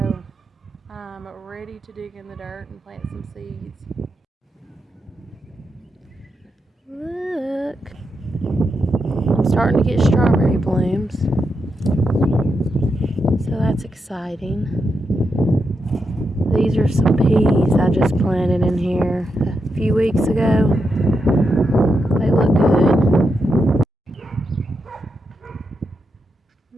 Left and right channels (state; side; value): normal; both; correlation 0.85